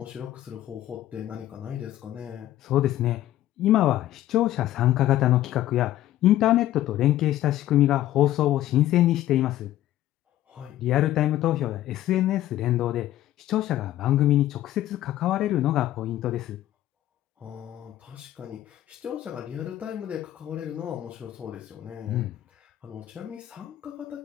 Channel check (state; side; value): quieter; right; 13.6 dB